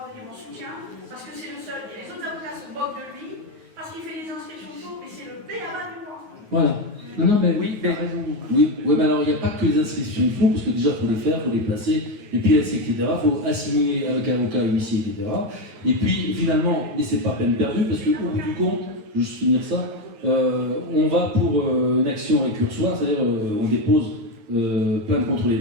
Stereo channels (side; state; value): left; late; 9.6 ms